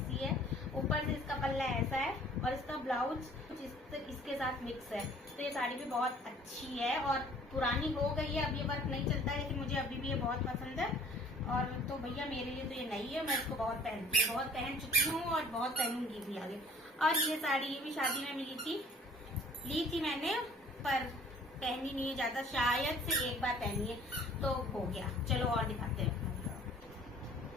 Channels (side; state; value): both; normal; correlation 0.53